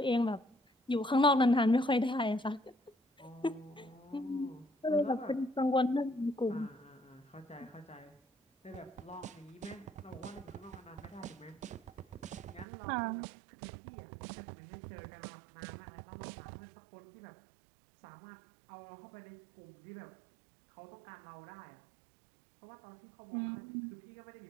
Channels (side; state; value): left; drops out; at 12.7 s